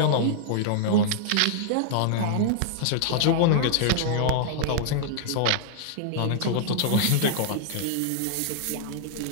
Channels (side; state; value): both; different; correlation -0.01